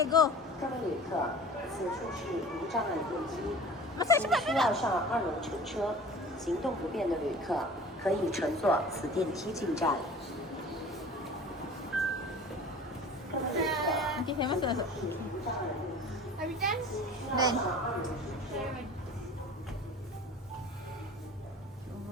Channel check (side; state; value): both; normal; correlation 0.42